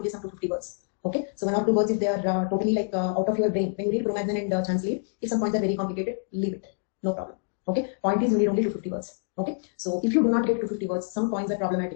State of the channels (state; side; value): silent; right; 60 dB below the other